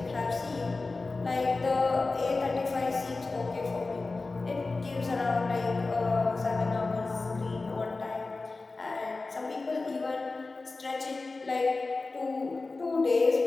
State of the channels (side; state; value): right; quieter; 3.6 dB